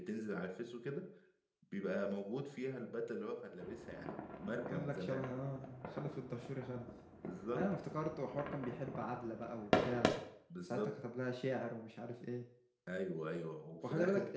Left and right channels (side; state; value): both; identical; correlation 1.00